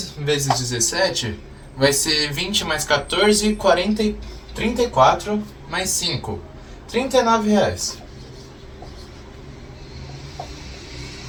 vezes 17 vai ser 20 mais 14, 40, 34 mais 5, R$39.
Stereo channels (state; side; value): identical; both; correlation 1.00